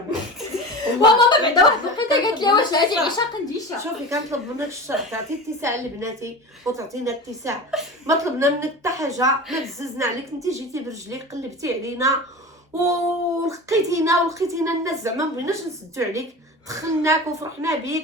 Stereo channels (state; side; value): normal; both; correlation 0.31